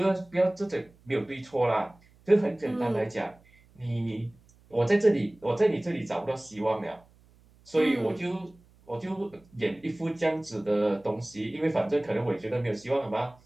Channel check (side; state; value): right; noise; hum, 29 dB below the sound